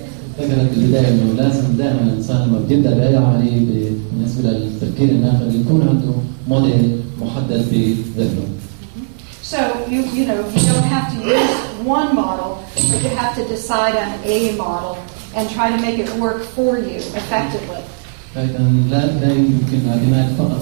ذكرت البداية انه لازم دائما الانسان لما بيبدا باي عملية بالنسبة للتفكير الناقد يكون عنده موديل محدد بذهنه. So you don't have to use one model, but you have to decide on a model and try to make it work for you effectively. لكن لا يمكن الاعتماد فقط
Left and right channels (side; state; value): left; silent; digital silence